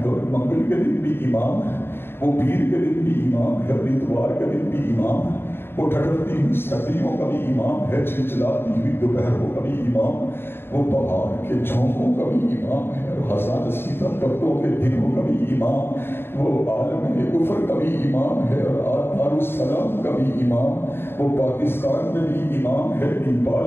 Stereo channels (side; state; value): right; late; 0.11 ms